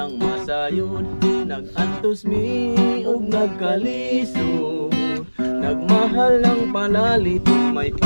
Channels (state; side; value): inverted; both; correlation -1.00